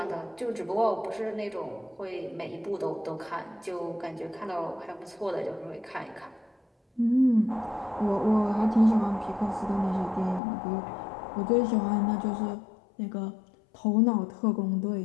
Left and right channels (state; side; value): drops out; right; at 10.4 s